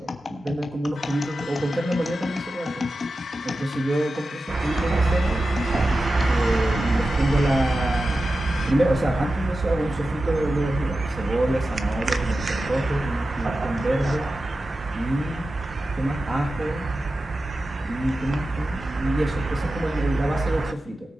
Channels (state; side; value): normal; both; correlation 0.93